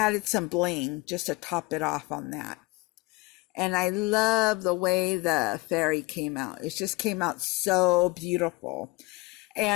some bling just to top it off on that. And I love the way the fairy came out. It just came out so beautiful.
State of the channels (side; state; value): right; quieter; 23.3 dB